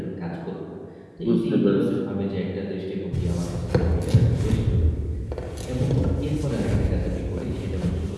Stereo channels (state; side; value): identical; both; correlation 1.00